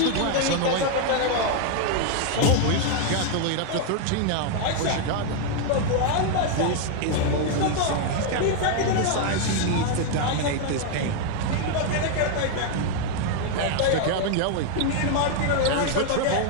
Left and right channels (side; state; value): both; different; correlation 0.00